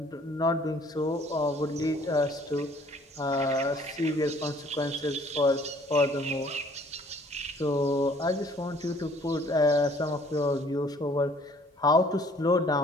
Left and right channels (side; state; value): both; normal; correlation 0.57